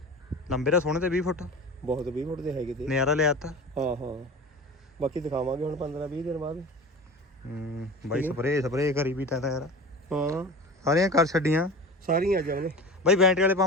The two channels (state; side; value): normal; both; correlation 0.34